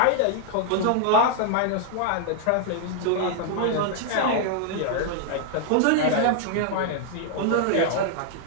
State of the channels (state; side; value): different; both; correlation 0.00